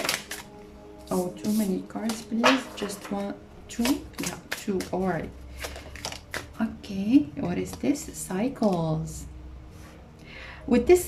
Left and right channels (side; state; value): both; identical; correlation 1.00